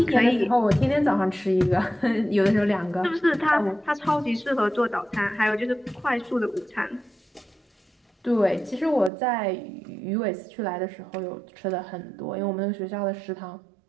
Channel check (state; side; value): drops out; left; at 9.1 s